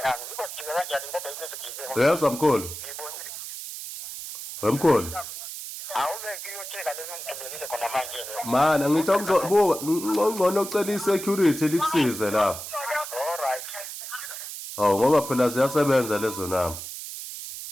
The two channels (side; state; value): right; noise; hiss, 9 dB below the sound